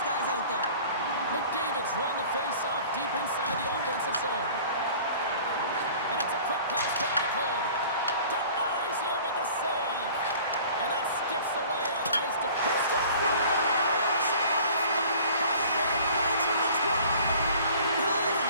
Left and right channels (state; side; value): inverted; both; correlation -0.48